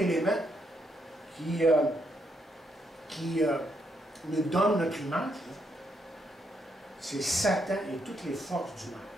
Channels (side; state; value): both; normal; correlation 0.77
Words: qui nous donne notre image, c'est Satan et toutes les forces du mal.